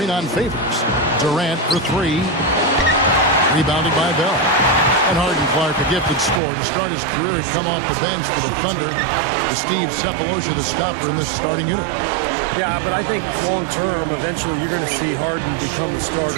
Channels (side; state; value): left; drops out; at 6.4 s